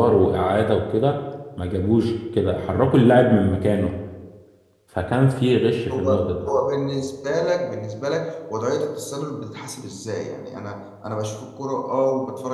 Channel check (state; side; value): identical; both; correlation 1.00